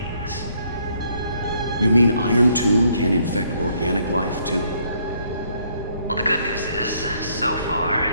You mean Iron Tomb can infect organic life, too? Well, the good news is, so far,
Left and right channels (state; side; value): inverted; both; correlation -0.69